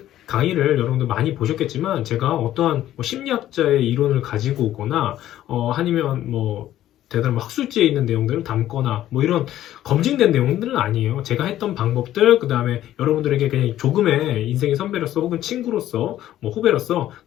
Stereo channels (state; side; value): quieter; right; 12.9 dB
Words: 강의를 여러분들 많이 보셨겠지만, 제가 어떠한 뭐 심리학자의 이론을 가지고 오거나, 아니면 뭐, 대단한 뭐 학술지에 있는 내용들을 담거나, 뭐 이런 검증된 내용들은 아니에요. 제가 했던 방법들, 그 다음에 여러분들에게 그냥 조금의 인생의 선배로서 혹은 친구로서, 뭐 후배로서,